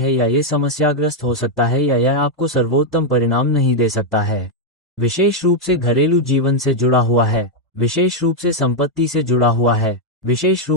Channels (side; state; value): both; normal; correlation 0.00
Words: या ये समस्याग्रस्त हो सकता है, या यह आपको सर्वोत्तम परिणाम नहीं दे सकता है। विशेष रूप से घरेलू जीवन से जुड़ा हुआ है, विशेष रूप से संपत्ति से जुड़ा हुआ है, विशेष